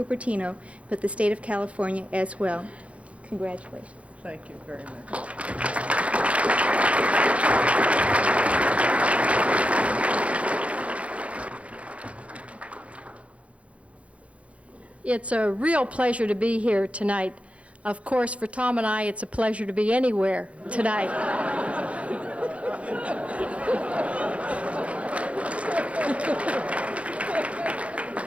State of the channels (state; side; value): late; left; 0.063 ms